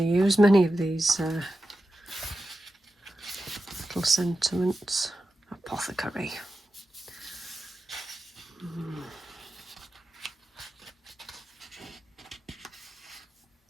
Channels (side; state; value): both; normal; correlation 0.91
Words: used many of these little sentiments. Apothecary.